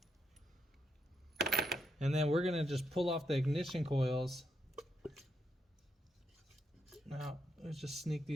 And then we're gonna just pull off the ignition coils. Now, let's just sneak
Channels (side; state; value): both; normal; correlation 0.79